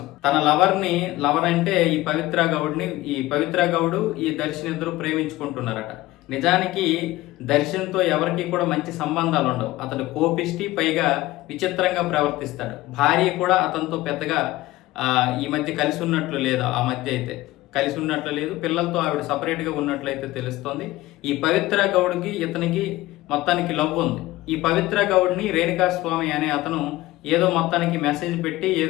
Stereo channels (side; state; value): right; quieter; 17.9 dB